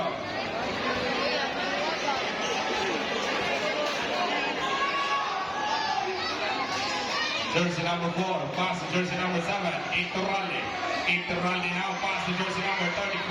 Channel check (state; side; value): identical; both; correlation 1.00